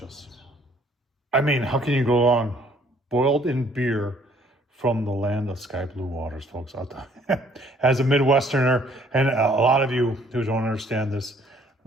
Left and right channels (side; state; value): both; normal; correlation 0.61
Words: I mean, how can you go wrong? Boiled in beer from the land of sky blue waters, folks. As a Midwesterner, and a lot of you who don't understand this,